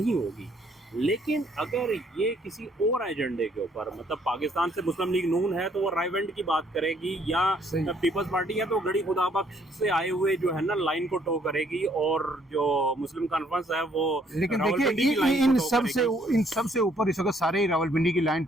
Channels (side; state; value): both; normal; correlation 0.66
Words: होगी। लेकिन अगर ये किसी और एजेंडे के ऊपर, मतलब पाकिस्तान से मुस्लिम लीग नून है तो वो रायवेंड की बात करेगी, या सही। पीपल्स पार्टी है तो गड़ी खुदा बख्श से आए हुए जो है ना लाइन को टो करेगी, और जो मुस्लिम कॉन्फ्रेंस है वो लेकिन रावलपिंडी की देखिए लाइन इन को टो सब से करेगी। इन सब से ऊपर इस वक्त सारे ही रावलपिंडी की लाइन